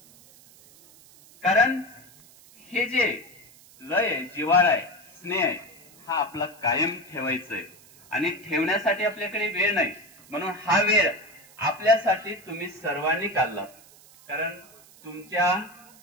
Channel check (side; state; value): right; noise; hiss, 24 dB below the sound